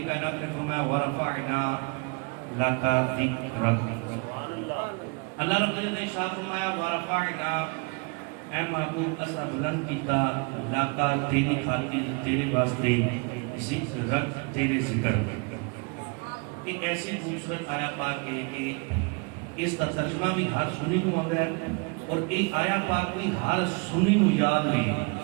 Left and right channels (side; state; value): left; quieter; 32.2 dB